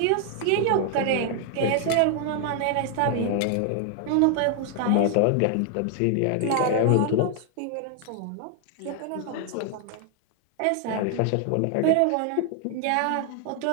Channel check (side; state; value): both; different; correlation 0.00